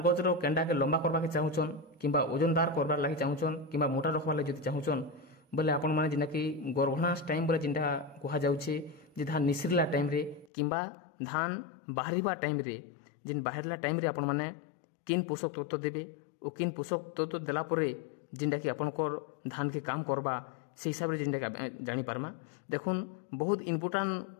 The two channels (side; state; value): right; drops out; at 10.5 s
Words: गजर केंडा के लंबा करबा के चाहुचन किंबा ओजनदार करबार लागि चाहुचन किंबा मोटा रखबार लागि जदि चाहुचन बोले आपण माने जेंडा कि गर्भनाश टाइम बोले जेंडा कहा जाउछे जे धान निसरला टाइम रे किंबा धान बाहरिबा टाइम रे जेन बाहरला टाइम रे आपण माने किन पोषक तत्व देबे ओ किन पोषक तत्व देला परे जेंडा कि आपण को धान के काम करबा से हिसाब रे जेंडा कि जानि पारमा। देखुन बहुत इम्पोर्टेंट